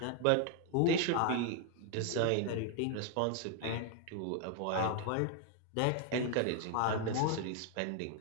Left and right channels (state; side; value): different; both; correlation 0.00